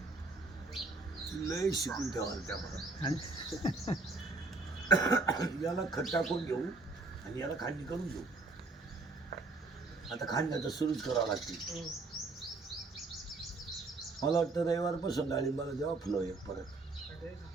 लय शिकून ठेवाल त्या याला खत टाकून घेऊ आणि याला खांडणी करून घेऊ. आता खांडण्याचं सुरूच करावं लागते. मला वाटतं रविवारपासून डाळिंबाला जेव्हा फुलं एक परत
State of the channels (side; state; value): left; quieter; 3.4 dB